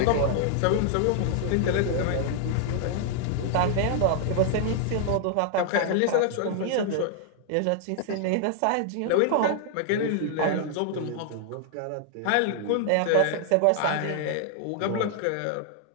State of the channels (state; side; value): different; both; correlation 0.00